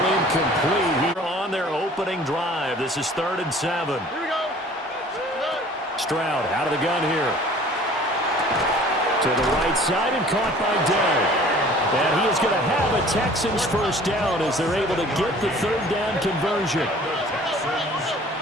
incomplete here on their opening drive. This is 3rd and 7. Here we go. Stroud out of the gun here. To the right side and caught by Dell. And he is going to have a Texans first down as they're able to get the 3rd down conversion.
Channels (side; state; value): both; normal; correlation 0.49